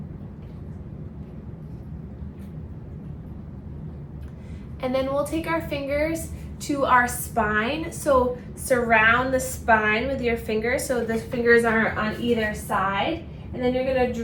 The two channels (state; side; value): identical; both; correlation 1.00